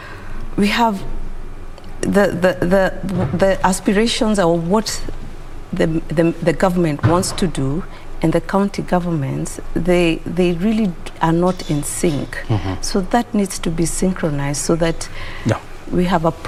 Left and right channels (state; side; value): identical; both; correlation 1.00